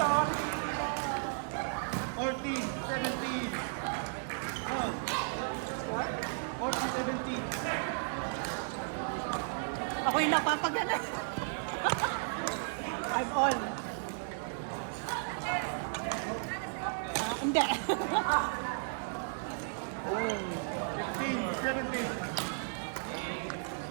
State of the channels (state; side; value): silent; left; digital silence